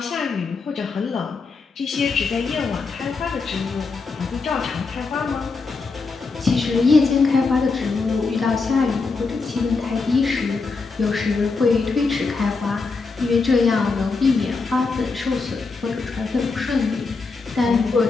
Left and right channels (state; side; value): quieter; right; 4.3 dB